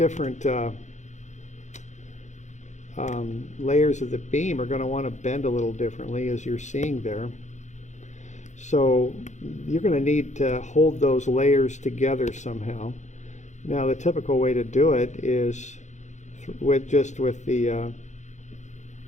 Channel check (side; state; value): right; late; 0.34 ms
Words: layers of the beam are going to want to bend a little differently, as you're seeing there. So you're going to need to hold those layers together somehow. Now the typical way to do it is with the